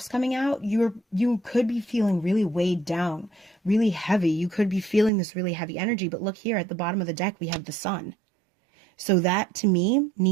coming out, you could be feeling really weighed down, really heavy. You could be feeling this really heavy energy, but look here at the bottom of the deck, we have the Sun. So that, to me,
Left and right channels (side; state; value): left; drops out; at 5.1 s